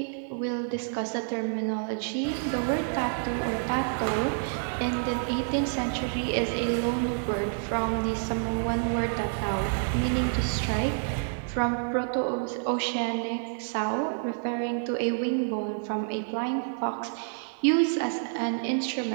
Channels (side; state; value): left; silent; digital silence